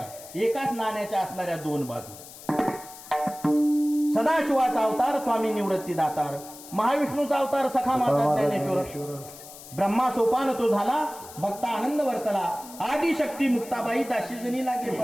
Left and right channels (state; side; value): noise; left; hiss, 17 dB below the sound